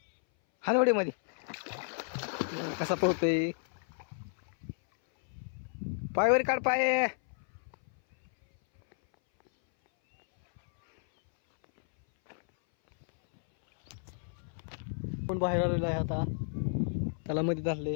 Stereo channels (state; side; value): silent; right; 57 dB below the other